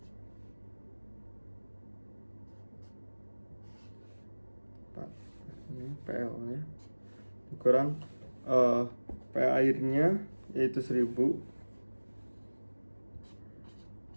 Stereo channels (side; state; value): both; inverted; correlation -1.00